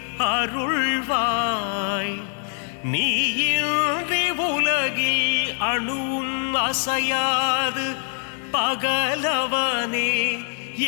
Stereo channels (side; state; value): right; silent; 63 dB below the other